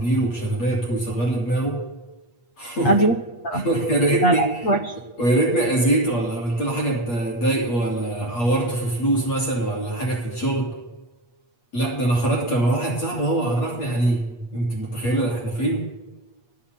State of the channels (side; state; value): right; late; 8.4 ms